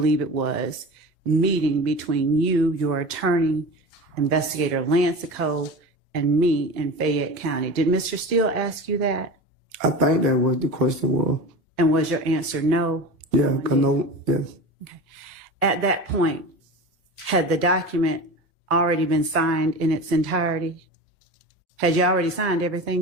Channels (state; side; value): normal; both; correlation 0.31